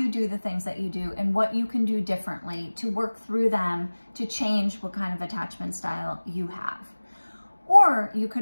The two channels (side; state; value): both; inverted; correlation -1.00